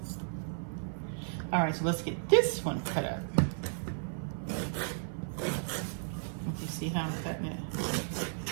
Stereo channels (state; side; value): silent; left; 55 dB below the other